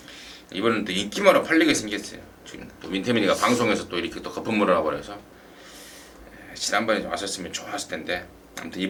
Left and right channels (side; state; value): both; identical; correlation 1.00